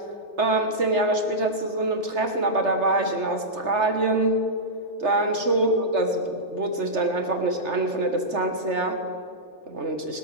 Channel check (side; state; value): left; late; 3.3 ms